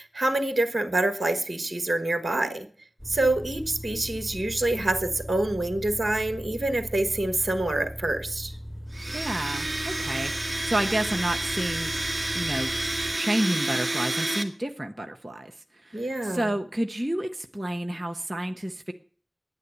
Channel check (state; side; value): normal; both; correlation 0.95